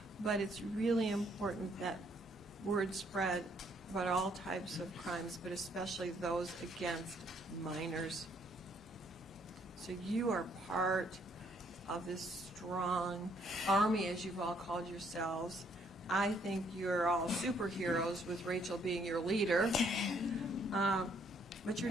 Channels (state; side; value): normal; both; correlation 0.68